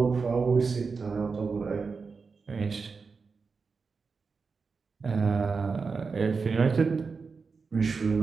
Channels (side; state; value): left; quieter; 4.8 dB